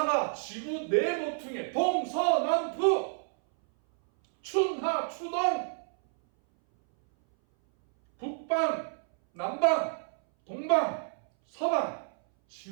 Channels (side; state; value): left; silent; 58 dB below the other